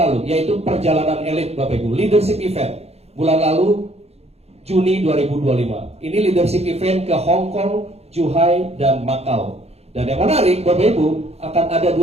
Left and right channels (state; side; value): late; left; 0.30 ms